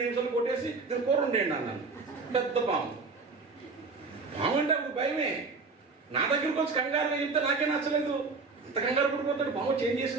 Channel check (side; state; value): left; quieter; 4.2 dB